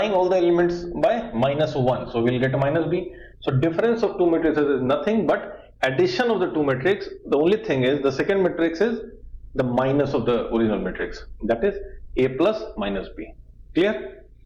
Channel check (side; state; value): both; identical; correlation 1.00